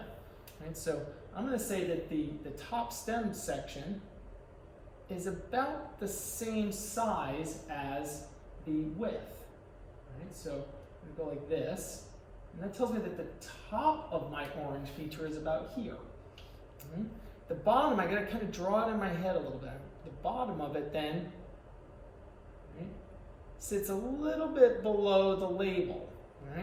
right? So I'm going to say that the top stem section is about the same size as the width, Right, so I'm going to go like this, and that tells me that the top of my orange feature is about here. The bottom, I got to kind of draw it in my head a little bit. The bottom of it then, right, sits a little bit below the label.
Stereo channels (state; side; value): identical; both; correlation 1.00